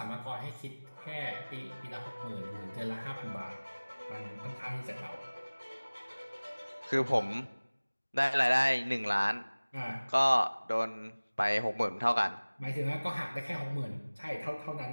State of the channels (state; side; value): inverted; both; correlation -1.00